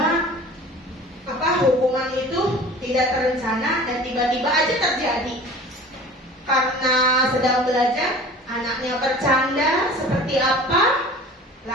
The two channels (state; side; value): normal; both; correlation 0.42